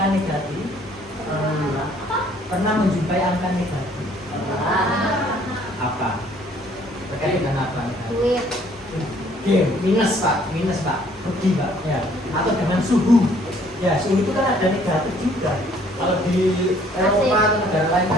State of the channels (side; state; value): both; normal; correlation 0.60